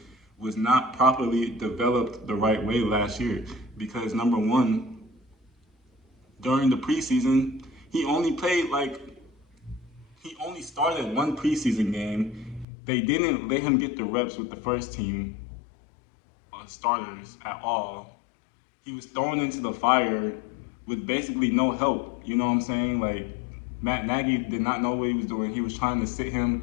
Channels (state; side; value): drops out; right; at 12.7 s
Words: was not properly developed the right way last year because number one, during the preseason, he only started one preseason game. They didn't let him get the reps with the first team starters at all. He was thrown into the fire with basically no help. You know what I'm saying? Like Matt Nagy did not know what he was doing. He was trying to sit